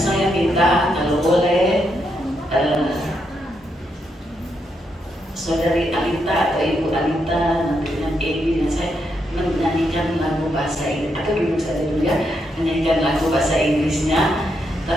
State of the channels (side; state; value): both; normal; correlation 0.80